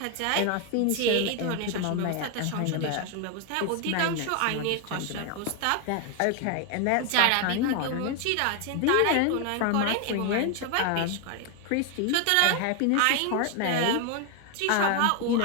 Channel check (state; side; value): different; both; correlation 0.01